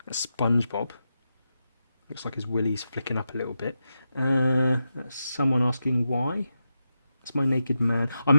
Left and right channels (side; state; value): both; inverted; correlation -0.87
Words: That's SpongeBob. Looks like his willy's flicking up a little bit. That's someone asking why. That's my naked man. I